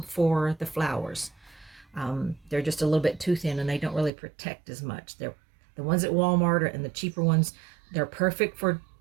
for the flowers. They're just a little bit too thin, and they don't really protect as much. They're the ones at Walmart and the cheaper ones, they're perfect for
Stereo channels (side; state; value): left; drops out; at 4.1 s